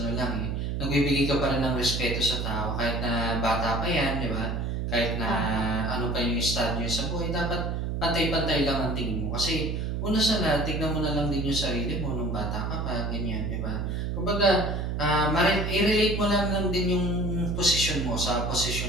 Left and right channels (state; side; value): noise; right; hum, 1 dB below the sound